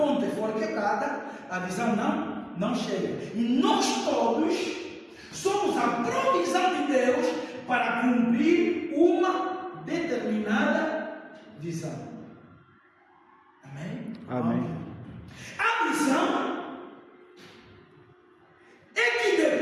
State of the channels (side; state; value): both; identical; correlation 1.00